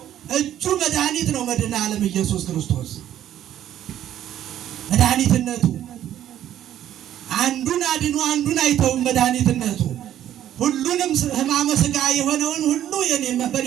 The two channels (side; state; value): left; quieter; 11.5 dB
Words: እጁ መድኃኒት ነው። መድኃኔ ዓለም ኢየሱስ ክርስቶስ መድኃኒትነቱ አንዱን አድኖ አንዱን አይተውም። መድኃኒትነቱ ሁሉንም ሕማመ ሥጋ የሆነውን ሁሉ